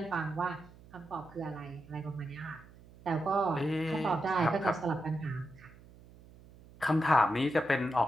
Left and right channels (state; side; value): noise; right; hum, 22 dB below the sound